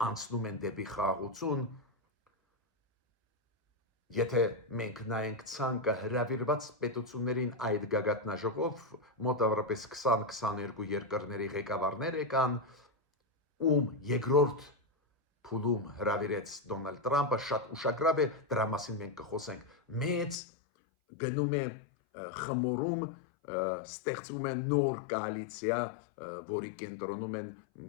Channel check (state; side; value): drops out; right; at 20.4 s